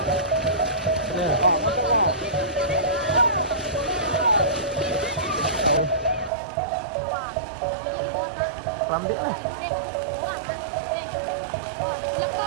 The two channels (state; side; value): drops out; left; at 6.3 s